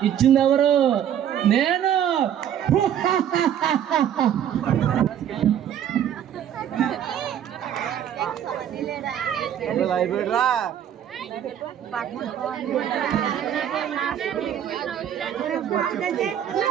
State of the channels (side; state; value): left; quieter; 9.9 dB